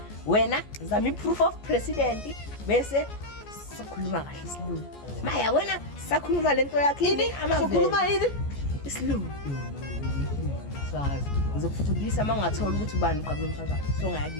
Wena zama iproof of president bese sikhuluma kahle isilungu. Maya wena sakhuluma lento yakhe yini sokhuluma yini? Isilungu. Sazi ngizokufundisa mangathola ukuthi ubani uqabula umphakathi. So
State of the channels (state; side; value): late; right; 14 ms